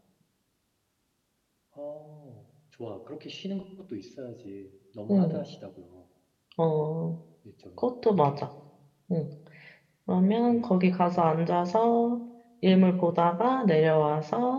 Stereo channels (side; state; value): both; identical; correlation 1.00